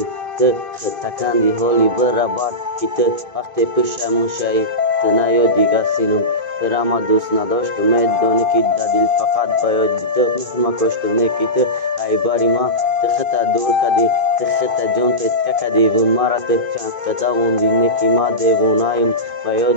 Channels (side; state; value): left; late; 2.5 ms